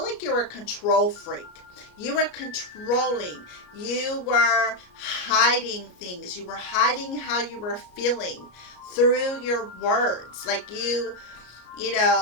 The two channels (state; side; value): late; right; 33 ms